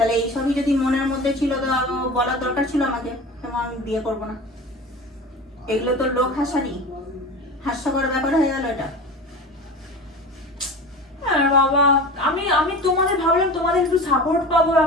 এইসবই যদি মনের মধ্যে ছিল তো বলার দরকার ছিল আমাকে, তেমন আমি বিয়ে করবো না। এগুলো তো লোক হাস্যকর ব্যাপার হয়ে গেল এটা। বাবা, আমি তোমাদের ভাবলাম তোমাদের একটু সাপোর্ট পাবো,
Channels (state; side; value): normal; both; correlation 0.33